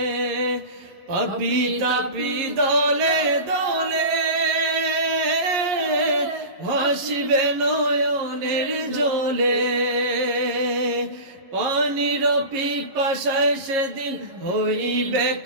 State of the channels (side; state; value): left; late; 11 ms